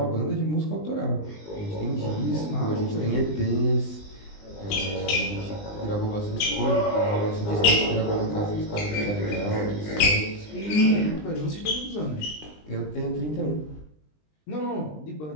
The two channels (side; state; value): right; late; 20 ms